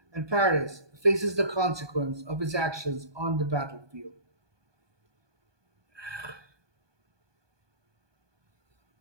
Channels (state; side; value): late; left; 1.2 ms